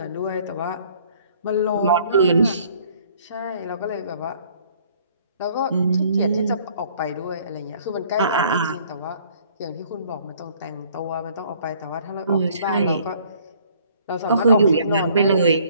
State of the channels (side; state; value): both; inverted; correlation -0.59